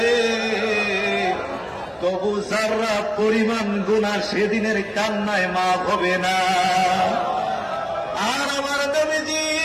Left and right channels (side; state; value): both; identical; correlation 1.00